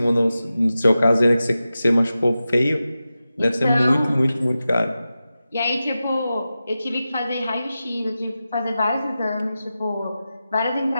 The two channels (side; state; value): both; inverted; correlation -0.93